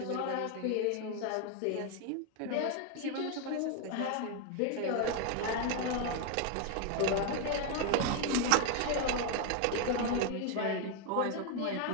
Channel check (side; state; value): both; different; correlation 0.01